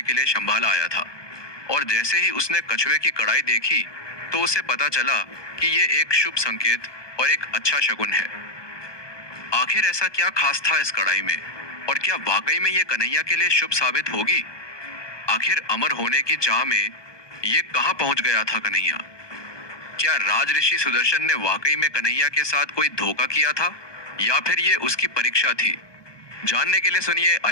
के लिए शंभाला आया था, और जैसे ही उसने कछुए की कढ़ाई देखी तो उसे पता चला कि ये एक शुभ संकेत और एक अच्छा शगुन है। आखिर ऐसा क्या खास था इस कढ़ाई में, और क्या वाकई में ये कन्हैया के लिए शुभ साबित होगी? आखिर अमर होने की चाह में ये कहां पहुंच गया था कन्हैया? क्या राज ऋषि सुदर्शन ने वाकई में कन्हैया के साथ कोई धोखा किया था, या फिर ये उसकी परीक्षा थी? जानने के लिए सुनिए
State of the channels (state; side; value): late; right; 1.2 ms